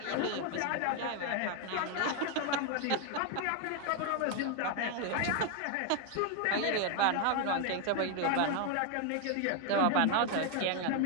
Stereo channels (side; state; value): both; different; correlation 0.00